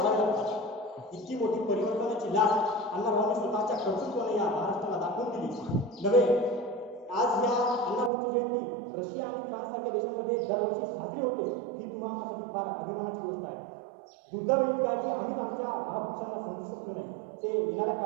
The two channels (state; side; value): drops out; left; at 8.1 s